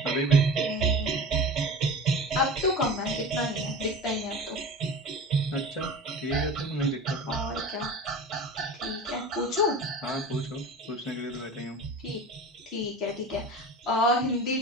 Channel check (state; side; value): normal; both; correlation 0.34